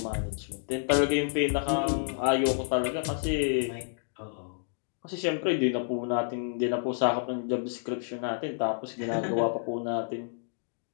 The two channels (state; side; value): silent; right; digital silence